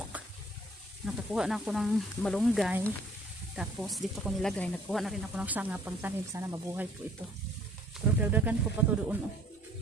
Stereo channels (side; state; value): both; normal; correlation 0.57